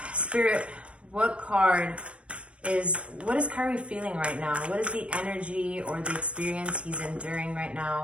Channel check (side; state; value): left; late; 0.060 ms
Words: Spirit, what is Kyrie feeling right now? What is the energy or the experience he's enduring right